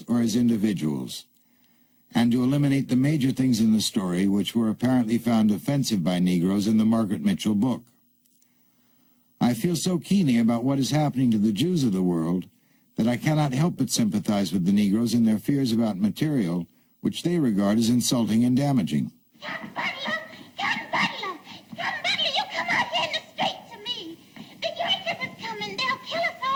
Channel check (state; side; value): identical; both; correlation 1.00